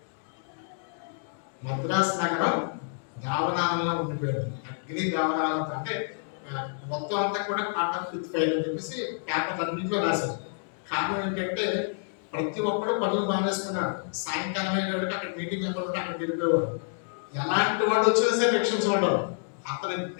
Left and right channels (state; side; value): silent; right; digital silence